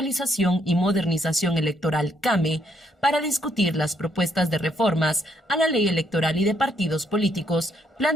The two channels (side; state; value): both; normal; correlation 0.72